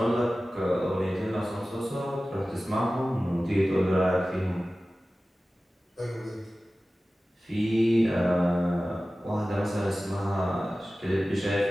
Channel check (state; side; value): normal; both; correlation 0.96